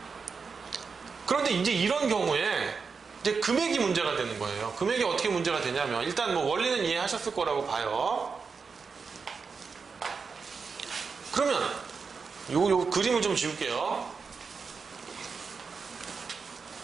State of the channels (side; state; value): left; quieter; 5.2 dB